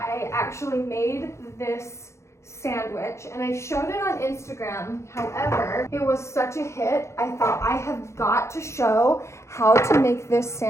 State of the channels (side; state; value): right; late; 0.14 ms